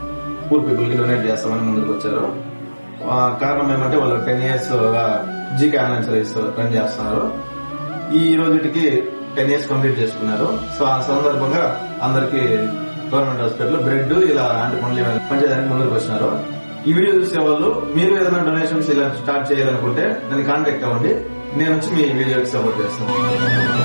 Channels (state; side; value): inverted; both; correlation -1.00